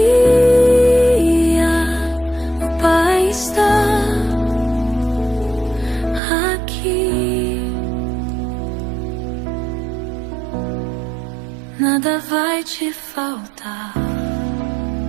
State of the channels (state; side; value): drops out; left; at 6.2 s